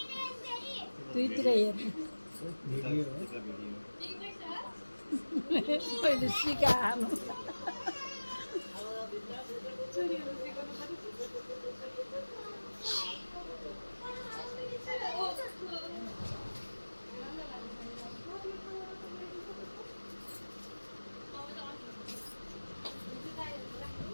दुईतिर हेर्नु पहिले सिकाहाल्नु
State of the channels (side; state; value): both; inverted; correlation -1.00